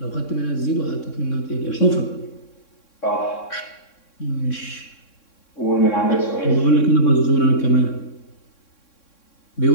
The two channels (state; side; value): late; right; 3.6 ms